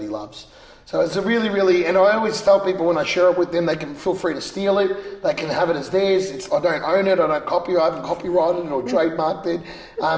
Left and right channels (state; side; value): identical; both; correlation 1.00